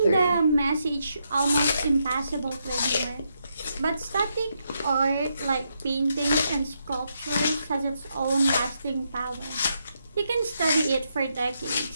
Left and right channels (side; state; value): both; inverted; correlation -0.80